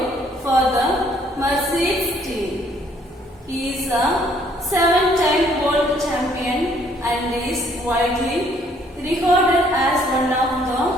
for the Mercedes team. He is a 7-time world champion and is widely regarded as one of the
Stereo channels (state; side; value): normal; both; correlation 0.64